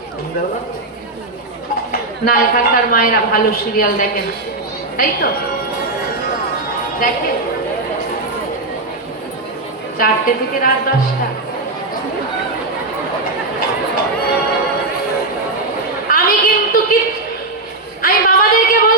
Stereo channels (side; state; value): left; quieter; 3.0 dB